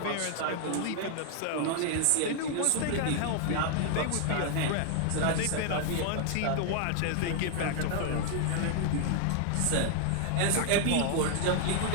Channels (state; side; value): different; both; correlation 0.00